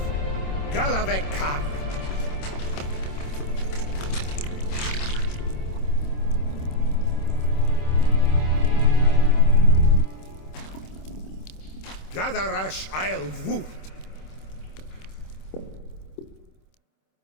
Galavekar. Gadarash I'll Woot.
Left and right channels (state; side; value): late; right; 26 ms